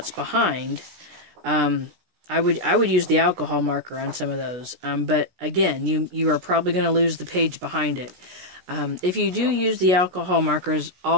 behind, I would use the alcohol marker on some of those. But again, you are probably going to lose the page behind it. If you do use the alcohol markers,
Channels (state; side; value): late; left; 16 ms